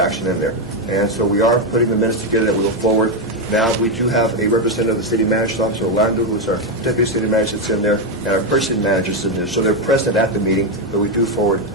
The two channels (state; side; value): normal; both; correlation 0.06